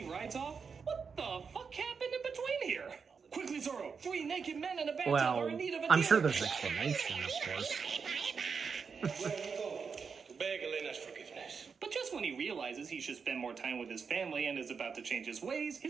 rides off. What the fuck happened in between here? Quickly, Zorro, 3 naked men in a bathtub Well, are in need of a I'm deal. sure there's an explanation, of course. To beg Elena's forgiveness. But just when he realizes he should spend more time with his family and is about to change his ways,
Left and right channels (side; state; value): left; quieter; 5.7 dB